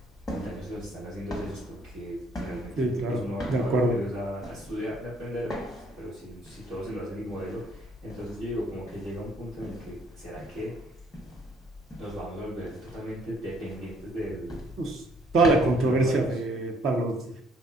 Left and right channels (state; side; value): normal; both; correlation 0.64